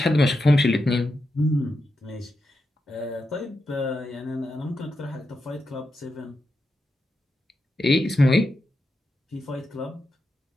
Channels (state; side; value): normal; both; correlation 0.87